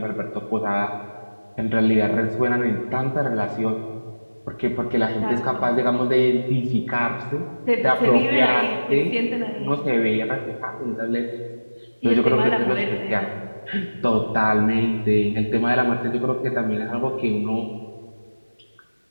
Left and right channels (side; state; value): both; inverted; correlation -1.00